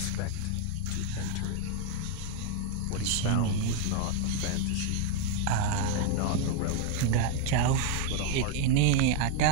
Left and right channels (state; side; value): different; both; correlation 0.00